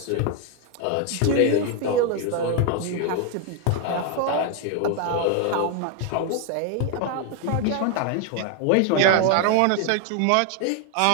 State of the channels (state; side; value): different; both; correlation 0.01